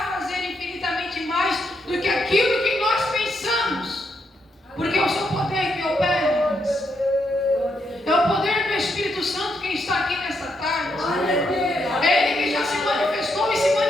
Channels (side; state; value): both; normal; correlation 0.79